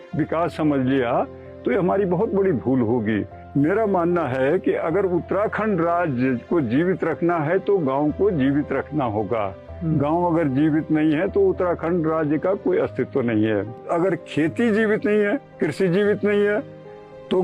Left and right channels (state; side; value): identical; both; correlation 1.00